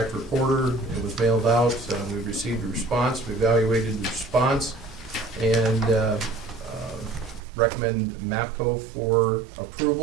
reporter, it was mailed out, we received a response, we evaluated the response, and recommend MAPCO for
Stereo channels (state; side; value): drops out; left; at 7.4 s